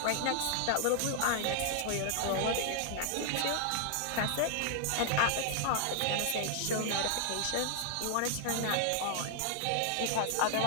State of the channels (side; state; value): both; different; correlation 0.00